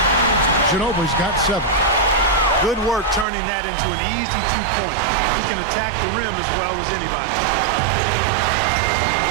Ginobili's got 7. Good work turning that into an easy 2-point. He can attack the rim as well as anybody.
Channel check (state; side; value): drops out; left; at 3.2 s